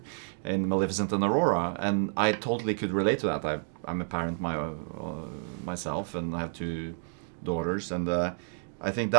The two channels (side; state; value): left; silent; digital silence